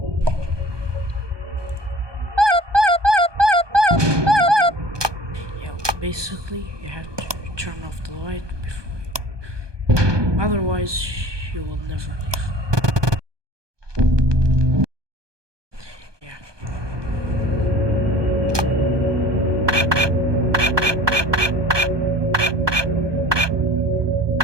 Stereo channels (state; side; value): late; left; 1.2 ms